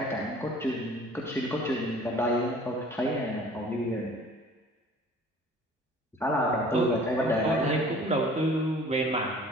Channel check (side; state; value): both; normal; correlation 0.49